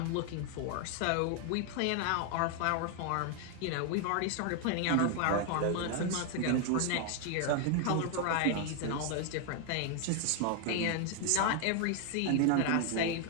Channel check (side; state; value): both; different; correlation 0.00